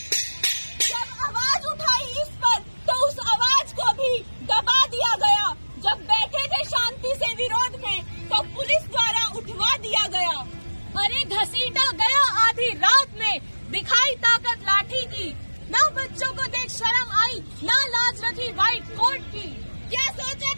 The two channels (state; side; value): inverted; both; correlation -1.00